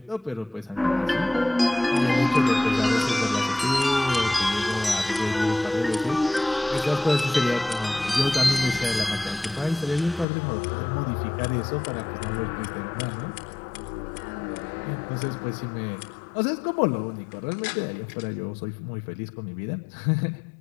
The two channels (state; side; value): drops out; right; at 10.2 s